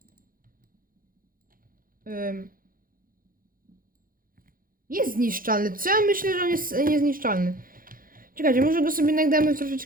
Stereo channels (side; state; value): left; late; 0.41 ms